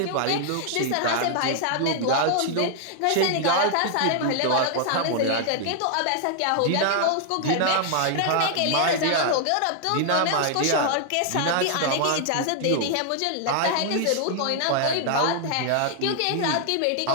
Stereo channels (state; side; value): different; both; correlation 0.00